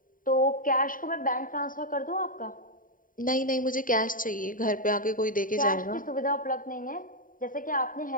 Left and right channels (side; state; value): right; late; 0.40 ms